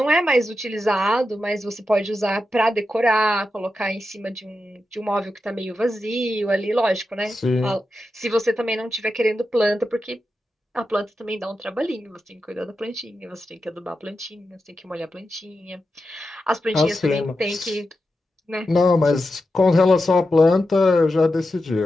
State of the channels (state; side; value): normal; both; correlation 0.89